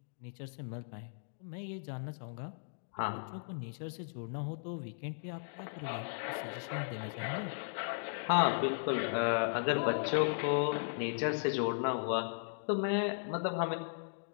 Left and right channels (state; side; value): silent; right; digital silence